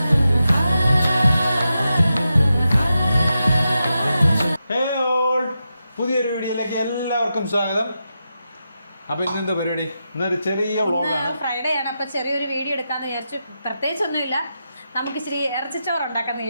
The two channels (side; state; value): both; inverted; correlation -0.88